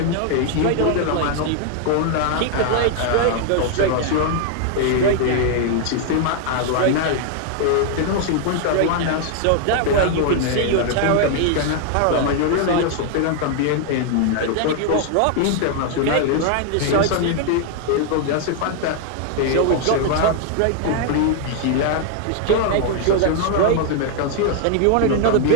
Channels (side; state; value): both; different; correlation 0.00